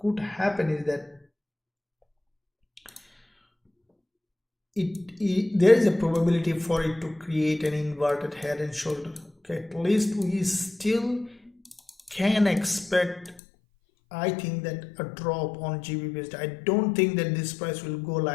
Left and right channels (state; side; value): drops out; right; at 13.4 s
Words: happen is that there is a probability for it to create an inverted head and shoulder. Okay, at least we still can expect, I think, that a drop on Gbpusd. I don't think that this price will go